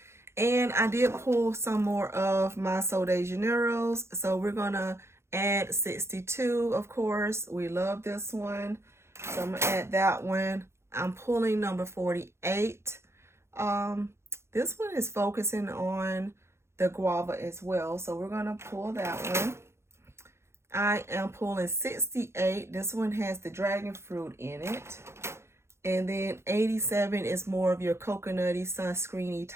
And I did pull some more of my Sol de Janeiros. So we're going to add 62, of course. We love this one. So I'm going to add that one. I'm pulling number 48. This one is focusing on the guava as well. So we're going to pull that one. I am pulling 68. This one has the dragon fruit in it. And then 87 is more of your coconutty, sunscreeny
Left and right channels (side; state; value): left; late; 0.13 ms